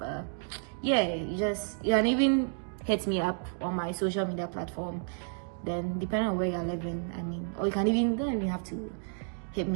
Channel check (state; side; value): silent; left; 57 dB below the other